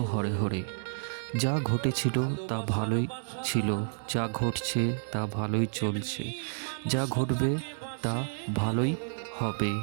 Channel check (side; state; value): left; silent; digital silence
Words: হরে হরে। যা ঘটেছিল তা ভালোই ছিল, যা ঘটছে তা ভালোই চলছে, যা ঘটবে তা ভালোই হবে।